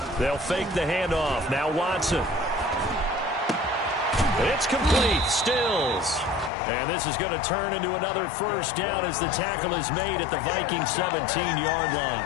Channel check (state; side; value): drops out; right; at 6.5 s